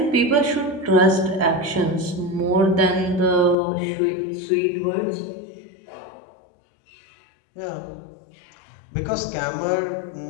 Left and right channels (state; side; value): drops out; right; at 3.6 s